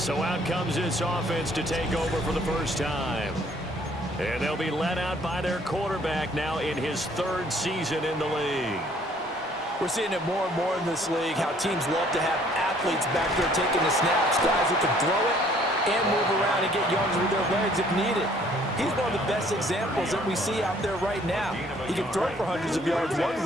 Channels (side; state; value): both; normal; correlation 0.60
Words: out comes this offense to take over for the first time. And they'll be led out by their quarterback now in his 3rd season in the league. We're seeing it more and more in this league, how teams love to have athletes back there taking the snaps, guys who can throw it and move around and get yards with their legs if needed. He's one of the best examples that we see out there right now. He can throw for hundreds of yards one